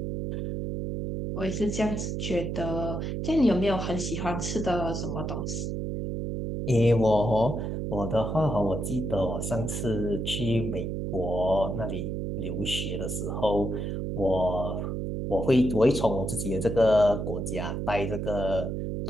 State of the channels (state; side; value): noise; right; hum, 3 dB below the sound